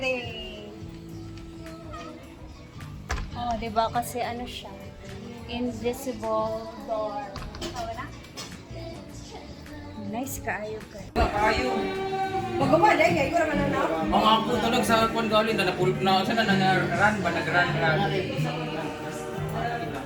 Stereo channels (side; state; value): both; identical; correlation 1.00